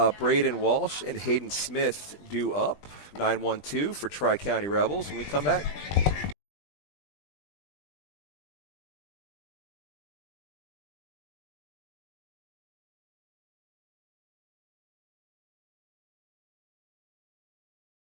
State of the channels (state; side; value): late; right; 20 ms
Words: Braden Walsh, and Hayden Smith due up. 9-1-2 for Tri-County Rebels. When we come back.